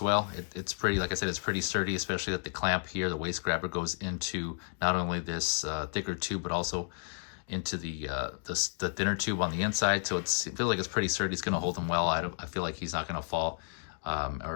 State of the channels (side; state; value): right; silent; digital silence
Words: well. It's pretty, like I said, it's pretty sturdy, especially that the clamp here, the waist grabber, goes into not only this thicker tube, but also into the thinner tube on the inside. So it feels like it's pretty sturdy. It's going to hold him well. I feel like he's not going to fall,